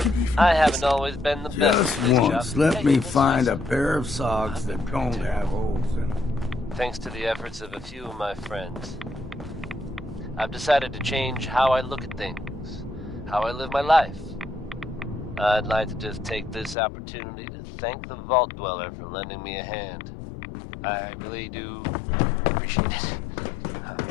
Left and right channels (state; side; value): drops out; right; at 16.8 s